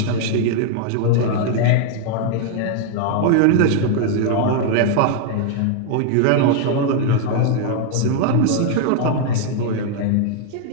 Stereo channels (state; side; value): different; both; correlation 0.00